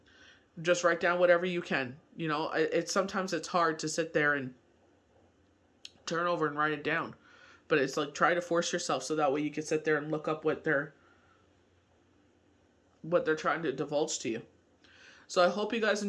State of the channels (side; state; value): both; identical; correlation 1.00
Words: Just write down whatever you can. Sometimes it's hard to sit there and turn over and write it down. But it's like, try to force yourself so that way you can sit there and look up what they're trying to divulge to you. So I hope you guys